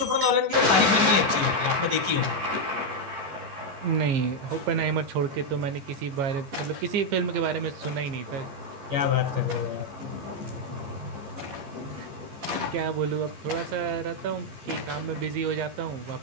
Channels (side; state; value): left; late; 15 ms